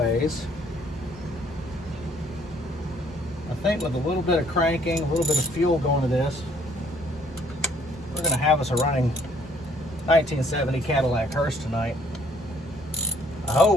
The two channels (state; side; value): normal; both; correlation 0.63